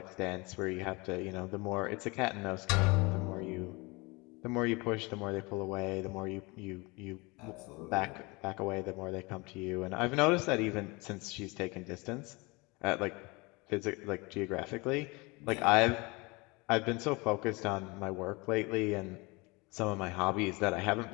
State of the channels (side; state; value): right; quieter; 26.1 dB